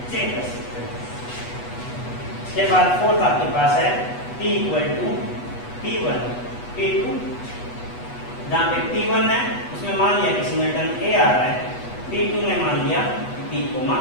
चेक कर सकते हैं। इसके बाद फोर्थ आपके पास है P = P1, P2। जहाँ पे P1 है उसमें मान लिया कि सिंगलटन A आ रहा है, P2 में मान लिया B,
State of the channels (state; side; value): late; right; 8.2 ms